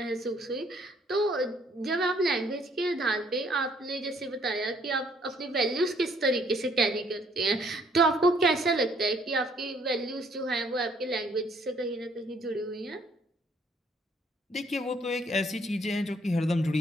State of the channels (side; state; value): both; normal; correlation 0.64